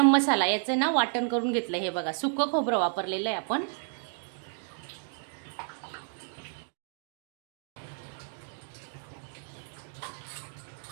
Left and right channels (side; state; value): left; silent; 57 dB below the other